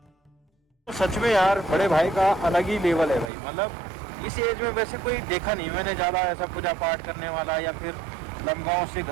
सच में यार, बड़े भाई का अलग ही लेवल है भाई। मतलब इस एज में वैसे कोई देखा नहीं मैंने ज़्यादा ऐसा पूजा पाठ करने वाला, या फिर लमगांव से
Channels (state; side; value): drops out; left; at 3.3 s